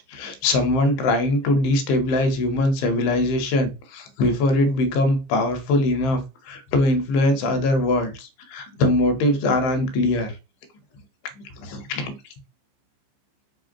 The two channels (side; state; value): right; late; 15 ms